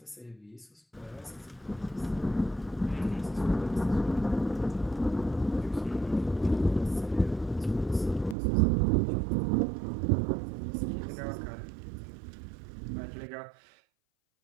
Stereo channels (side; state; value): left; drops out; at 8.3 s